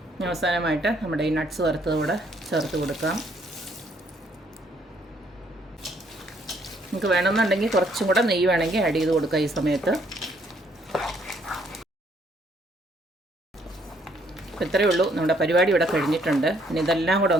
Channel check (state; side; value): normal; both; correlation 0.67